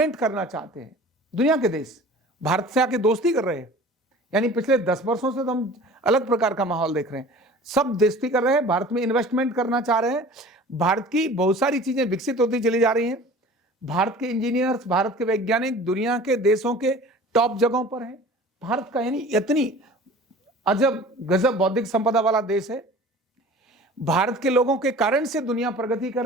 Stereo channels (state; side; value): normal; both; correlation 0.43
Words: करना चाहते हैं। दुनिया के देश भारत से आके दोस्ती कर रहे हैं। यानी पिछले 10 वर्षों से तो हम अलग प्रकार का माहौल देख रहे हैं। सब दोस्ती कर रहे हैं, भारत में इन्वेस्टमेंट करना चाह रहे हैं। भारत की बहुत सारी चीजें विकसित होती चली जा रही हैं। भारत के इंजीनियर्स, भारत के वैज्ञानिक दुनिया के देशों के टॉप जगहों पर हैं। भारत का यानी इतनी अजब गजब बौद्धिक संपदा वाला देश है। भारत के लोगों के कारण से दुनिया प्रगति कर